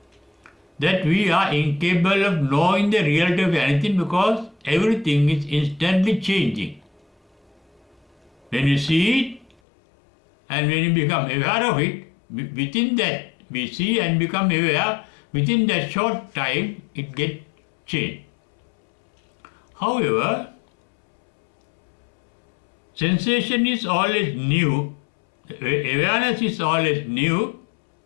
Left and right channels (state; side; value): drops out; right; at 9.6 s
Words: that we are incapable of knowing the reality of anything because everything is instantly changing. When you see it and when you become aware of it, within that we see and become aware, within that short time it gets changed. However, Sensation is always new, awareness is always new,